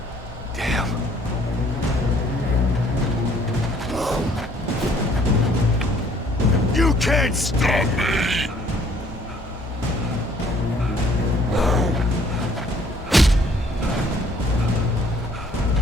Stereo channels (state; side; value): normal; both; correlation 0.60